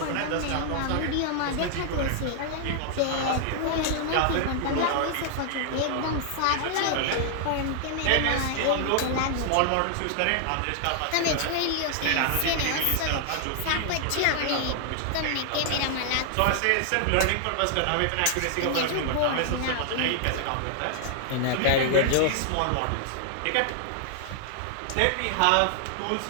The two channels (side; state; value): both; different; correlation -0.01